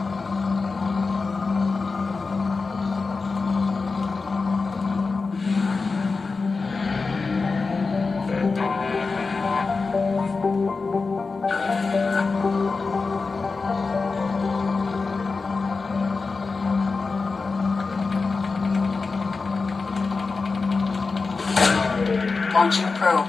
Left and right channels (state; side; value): quieter; right; 4.2 dB